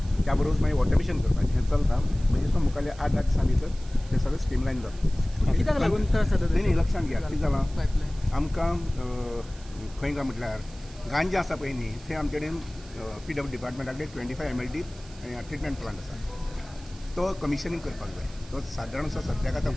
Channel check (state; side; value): noise; right; hiss, 22 dB below the sound